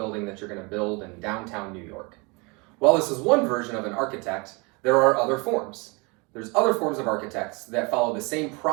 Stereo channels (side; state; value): left; quieter; 29.1 dB